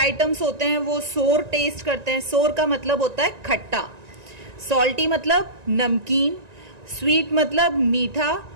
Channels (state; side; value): late; left; 1.9 ms